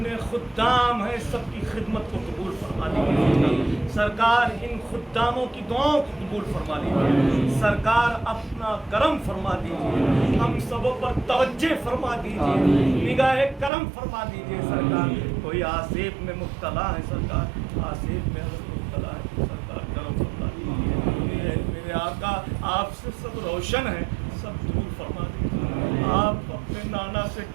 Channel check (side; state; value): left; drops out; at 13.7 s